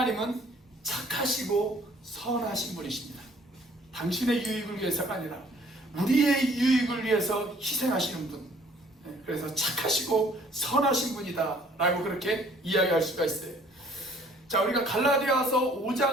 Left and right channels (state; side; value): normal; both; correlation 0.57